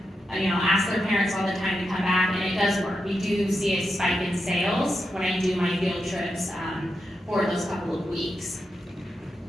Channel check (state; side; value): normal; both; correlation 0.87